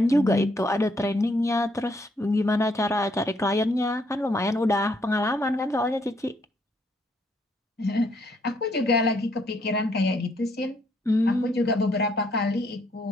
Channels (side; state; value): both; normal; correlation 0.71